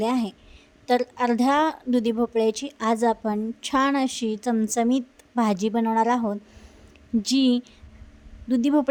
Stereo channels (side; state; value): both; identical; correlation 1.00